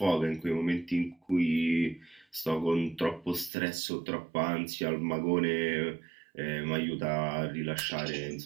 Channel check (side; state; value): left; drops out; at 3.5 s